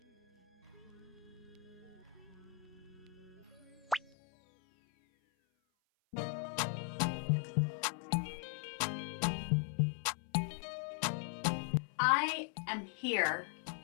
I am here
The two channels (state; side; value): drops out; right; at 4.1 s